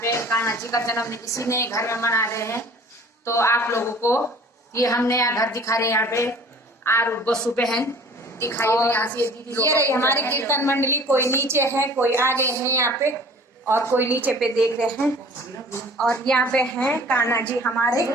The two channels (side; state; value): both; normal; correlation 0.48